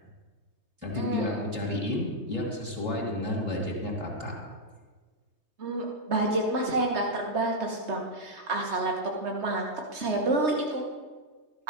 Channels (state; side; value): late; left; 3.2 ms